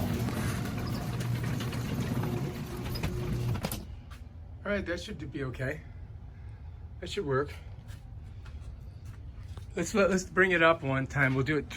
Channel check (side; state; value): both; identical; correlation 1.00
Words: All right, that should be okay. That should work. Let's bring it up one time. We'll do it